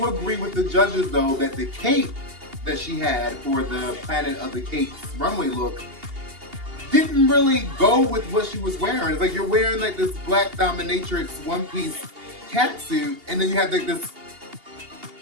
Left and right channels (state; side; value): late; left; 2.8 ms